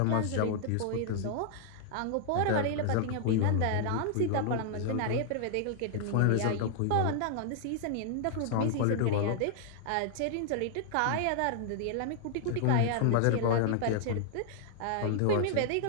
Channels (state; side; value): different; both; correlation -0.01